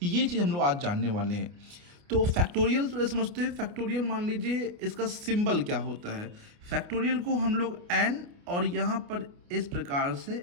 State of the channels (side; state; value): left; late; 29 ms